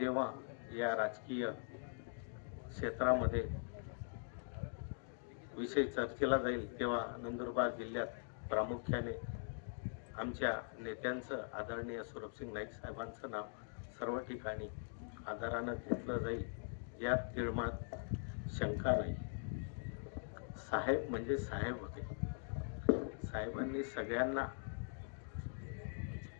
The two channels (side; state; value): right; silent; digital silence